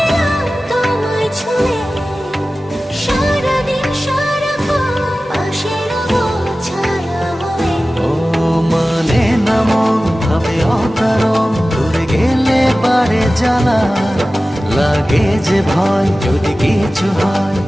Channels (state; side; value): normal; both; correlation 0.96